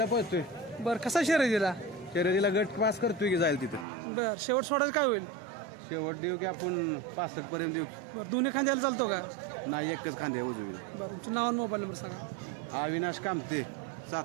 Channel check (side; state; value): left; drops out; at 3.9 s